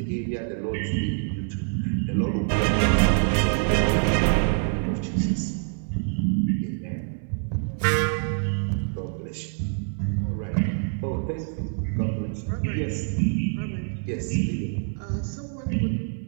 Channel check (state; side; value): silent; left; 57 dB below the other